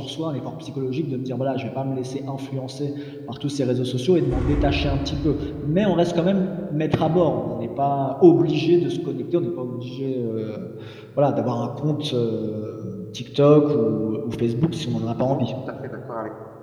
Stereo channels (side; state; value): both; identical; correlation 1.00